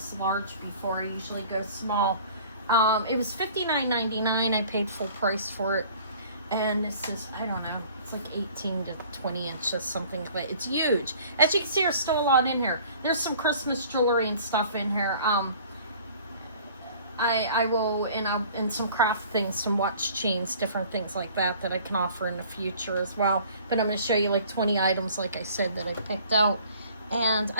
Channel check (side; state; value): both; inverted; correlation -0.51